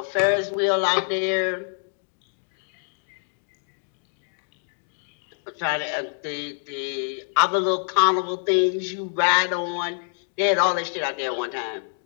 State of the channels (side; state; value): right; silent; digital silence